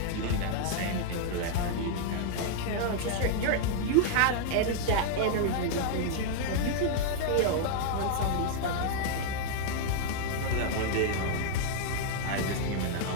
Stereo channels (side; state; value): both; different; correlation -0.01